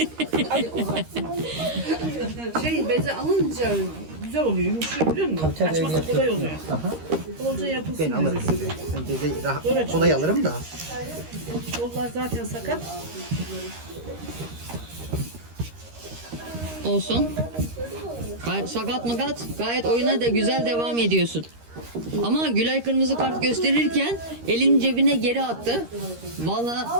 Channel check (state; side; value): late; left; 13 ms